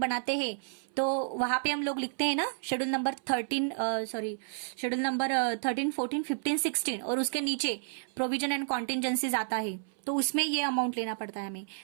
हैं तो वहां पे हम लोग लिखते हैं ना शेड्यूल नंबर 13, शेड्यूल नंबर 13, 14, 15, 16, और उसके नीचे प्रोविजन एंड कॉन्टिंजेंसीज आता है, तो उसमें ये अमाउंट लेना पड़ता है हमें.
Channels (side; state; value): left; silent; 57 dB below the other